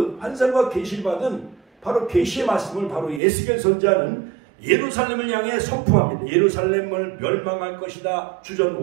환상과 계시를 받은 바로 계시의 말씀을 바로 에스겔 선지자는 예루살렘을 향해 선포합니다. 예루살렘을 멸망할 것이다. 주전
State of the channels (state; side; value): drops out; left; at 3.2 s